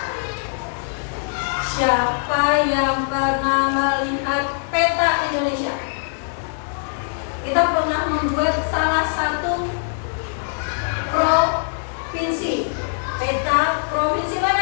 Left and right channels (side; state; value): right; silent; digital silence